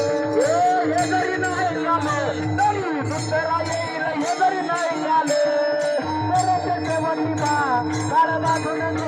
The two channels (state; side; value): identical; both; correlation 1.00